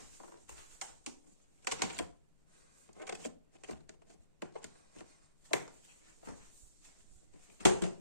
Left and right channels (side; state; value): both; inverted; correlation -0.69